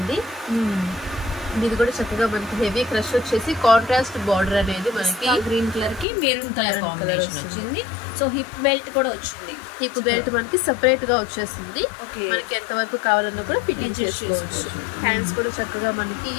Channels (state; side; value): drops out; right; at 6.1 s